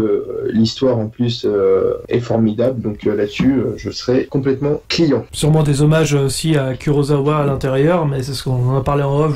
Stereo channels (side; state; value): both; identical; correlation 1.00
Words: L'histoire en plus est formidable, donc là-dessus, je serais complètement client. Sûrement des hommages aussi à Kurosawa à l'intérieur, mais c'est ce qu'on en a parlé en off